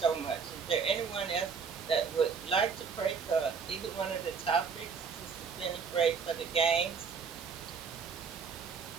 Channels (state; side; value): quieter; left; 5.9 dB